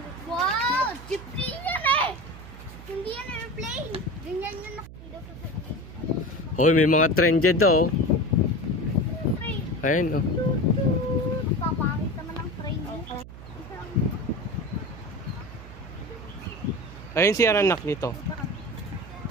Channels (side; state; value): right; noise; hum, 15 dB below the sound